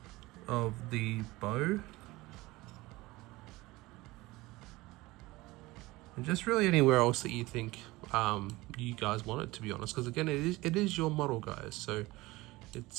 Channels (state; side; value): quieter; left; 20.3 dB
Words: of the bow, and just really anywhere else that you think you guys want it, to be honest, because again it is your model, guys, so